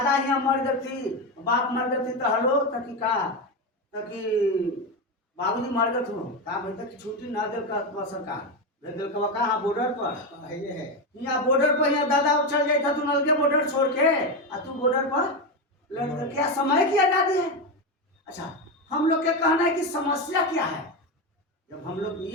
यहाँ मर गई थी, बाप मर गई थी, तो हलो तकी का तकी बाबूजी मर गए थे, कहा भाई तक छुट्टी ना दे सरकार भेज कहाँ बॉर्डर पर है। यहाँ बॉर्डर पर यहाँ दादा चल जाए था, तू नल के बॉर्डर छोड़ के, और तू बॉर्डर पर लड़, क्या समय की आज़ादी है? अच्छा, हम लोग के कहना है कि समस्या क्या है। जब हम लोग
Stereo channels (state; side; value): normal; both; correlation 0.13